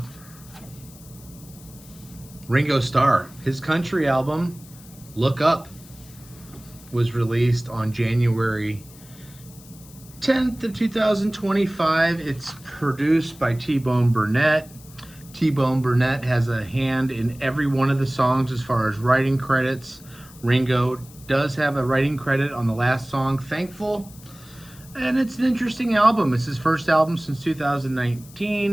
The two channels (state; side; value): noise; left; hiss, 22 dB below the sound